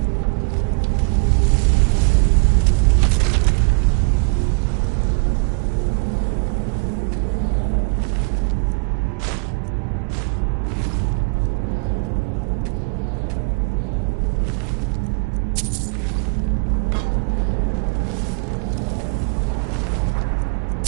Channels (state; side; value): quieter; left; 32.9 dB